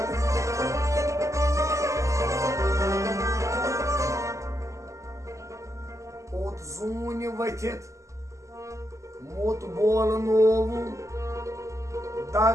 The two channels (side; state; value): left; late; 0.15 ms